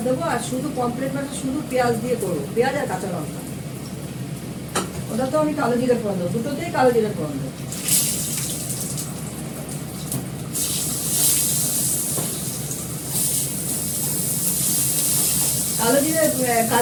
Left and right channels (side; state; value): both; identical; correlation 1.00